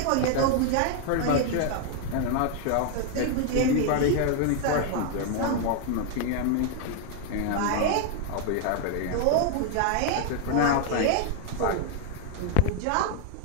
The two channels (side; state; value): both; different; correlation 0.00